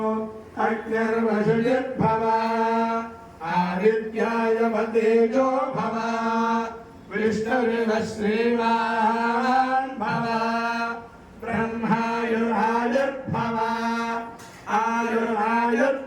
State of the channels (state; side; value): identical; both; correlation 1.00